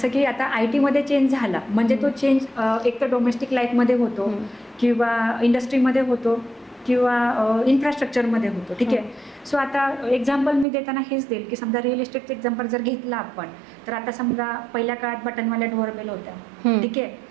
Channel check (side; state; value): left; drops out; at 10.7 s